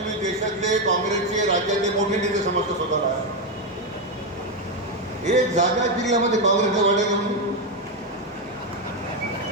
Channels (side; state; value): both; normal; correlation 0.07